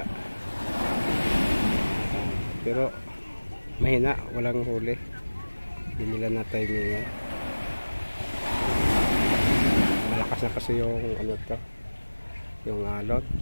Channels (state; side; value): inverted; both; correlation -1.00